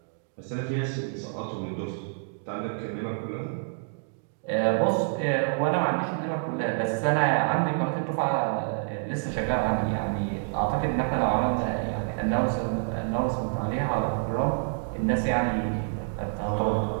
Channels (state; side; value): silent; left; digital silence